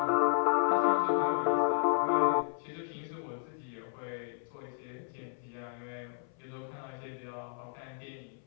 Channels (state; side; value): silent; right; 56 dB below the other